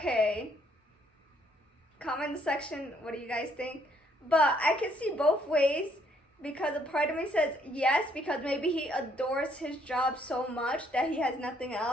Comment in the section, what do you guys think? But I can see both ways because a part of me says yes, because maybe he adores his job so much that he has nothing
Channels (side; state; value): both; normal; correlation 0.68